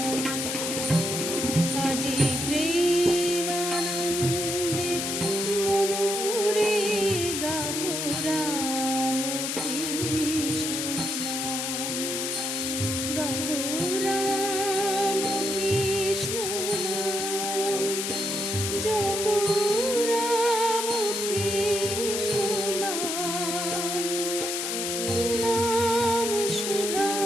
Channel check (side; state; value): left; noise; hiss, 2 dB below the sound